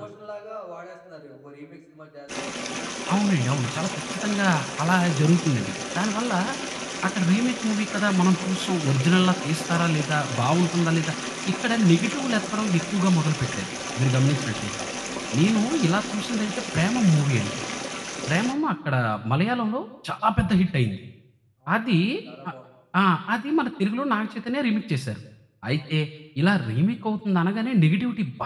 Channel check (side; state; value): both; identical; correlation 1.00